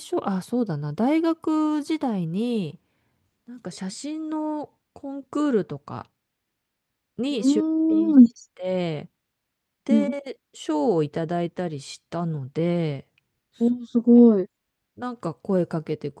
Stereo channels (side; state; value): both; identical; correlation 1.00